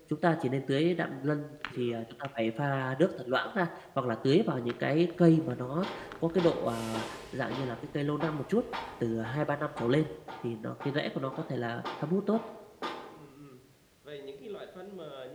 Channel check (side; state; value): both; identical; correlation 1.00